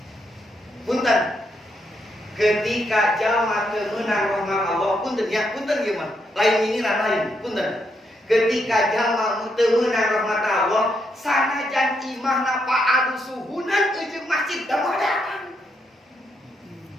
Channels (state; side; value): normal; both; correlation 0.79